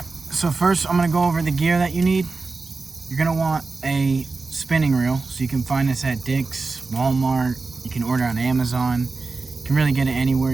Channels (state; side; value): quieter; left; 4.0 dB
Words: so first I'm going to go over the gear that you need. You're going to want a spinning reel, so you can find this at Dick's, Walmart. You can order on Amazon. You can really get it anywhere.